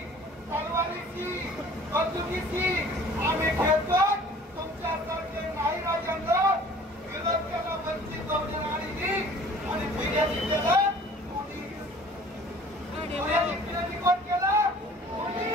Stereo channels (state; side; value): normal; both; correlation 0.50